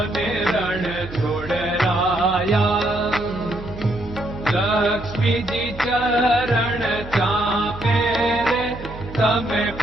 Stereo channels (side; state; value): right; noise; hum, 14 dB below the sound